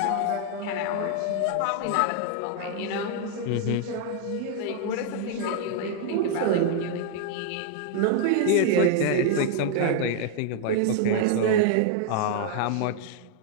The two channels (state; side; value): different; both; correlation 0.00